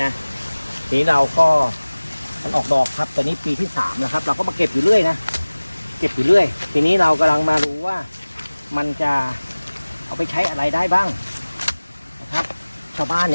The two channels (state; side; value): inverted; both; correlation -1.00